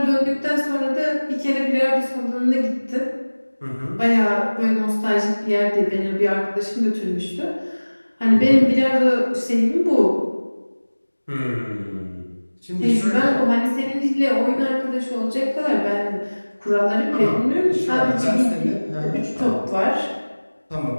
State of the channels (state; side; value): inverted; both; correlation -1.00